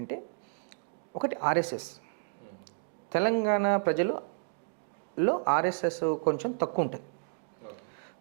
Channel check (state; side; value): silent; left; digital silence